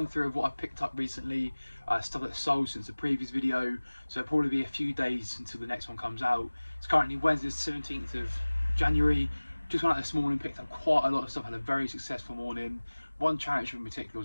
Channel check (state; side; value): inverted; both; correlation -1.00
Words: through of what I've picked up recently, stuff that's sold since the previous video, so it'll probably be a few days until the next one comes out. It's currently Wednesday the 17th of January. Just went out this morning, picked up quite a lot of stuff, had a very successful morning. One charity shop in particular